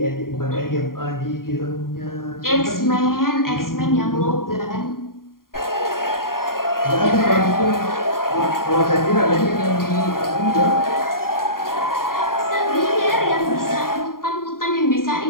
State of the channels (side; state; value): right; late; 0.91 ms